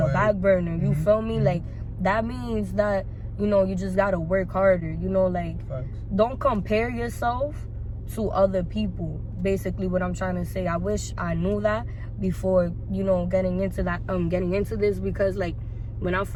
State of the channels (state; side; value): identical; both; correlation 1.00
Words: back burner. You feel me? Like, that means that, you know, you just gotta work harder. You know, like, don't compare yourself to other people. Basically, what I'm trying to say. I wish I knew that before, you know, getting into this, because like when I